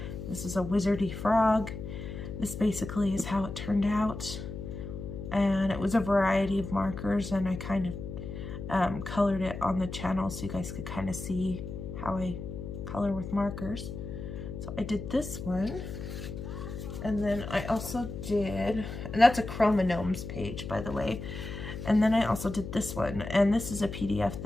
This is a wizardy frog. This basically is how it turned out, and it was a variety of markers, and I kind of colored it on the channel so you guys could kind of see how I color with markers. So I did this one, and then I also did, and that's a Chromognomes page, by the way, and then I also did this one, and this is a PDF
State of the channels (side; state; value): left; noise; hum, 8 dB below the sound